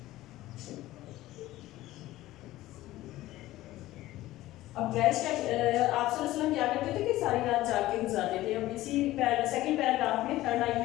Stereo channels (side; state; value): right; quieter; 16.2 dB